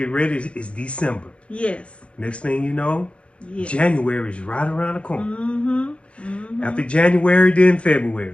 ready. It's December. Yes. Next thing you know, yes. January is right around the corner. Mm-hmm. Mm-hmm. After January, then February.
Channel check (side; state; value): right; late; 0.060 ms